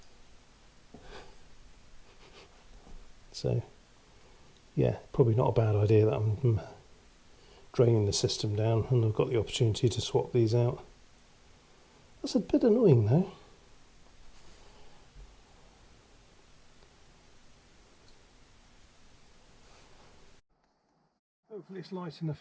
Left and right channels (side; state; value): both; identical; correlation 1.00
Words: So yeah, probably not a bad idea that I'm draining the system down, and I've got the opportunity to swap these out. That's a bit annoying though. Hopefully it's light